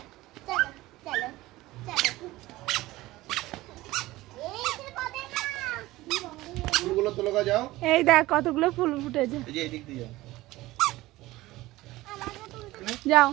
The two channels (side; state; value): left; quieter; 18.2 dB